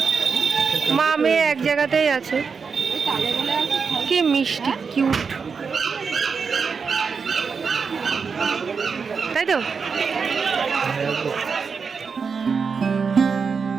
মা মেয়ে এক জায়গাতেই আছে। কি মিষ্টি, কিউট, তাই তো?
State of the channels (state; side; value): quieter; left; 5.5 dB